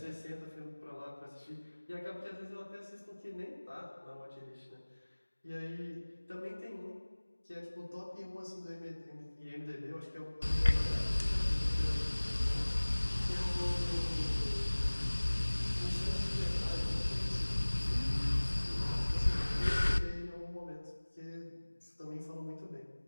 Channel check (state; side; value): inverted; both; correlation -1.00